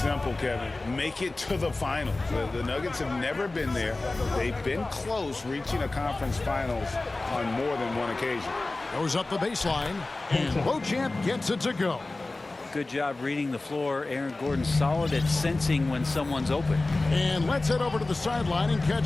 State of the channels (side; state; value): right; quieter; 3.1 dB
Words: Kevin. Make it to the finals. The Nuggets have never been there. They've been close reaching a conference finals on more than one occasion. Goes up the baseline, and Beauchamp gets it to go. Good job reading the floor. Aaron Gordon solid at sensing when someone's open. And let's head over to the sideline and